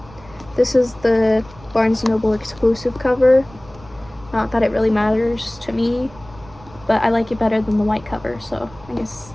This is the Barnes & Noble exclusive cover. Not that it really matters to me, but I like it better than the white cover, so I guess,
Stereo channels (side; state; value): right; noise; rumble, 22 dB below the sound